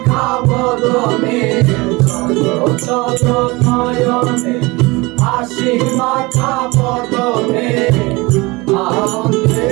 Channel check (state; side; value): quieter; left; 23.8 dB